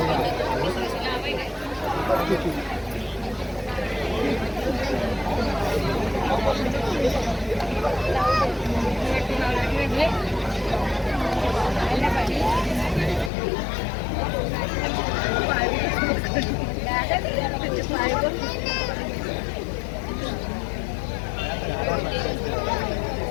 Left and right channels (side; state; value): right; drops out; at 13.3 s